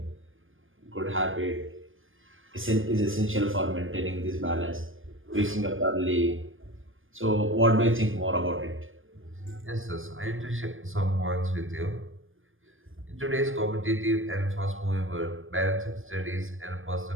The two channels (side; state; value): left; late; 0.59 ms